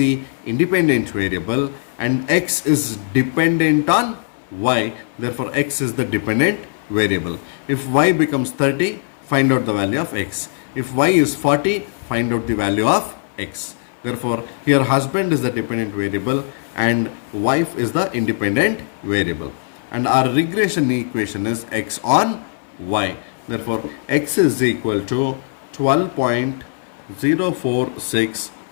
independent variable and x is dependent on y. Therefore, x is the dependent variable. If y becomes 30, find out the value of x. If y is 40, find out the value of x. Therefore, here husband is the dependent variable and wife is the independent variable. And our regression equation is x on y. Therefore, x is equal to 12.046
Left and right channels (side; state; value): right; silent; 63 dB below the other